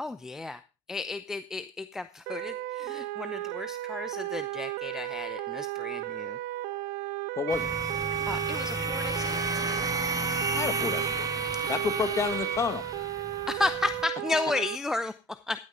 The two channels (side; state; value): both; normal; correlation 0.34